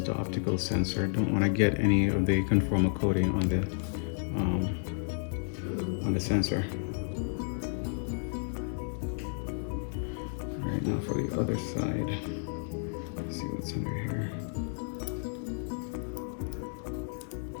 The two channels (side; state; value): right; silent; digital silence